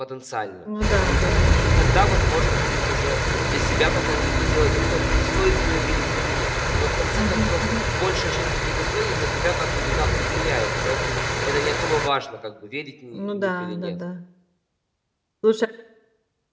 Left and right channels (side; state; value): both; identical; correlation 1.00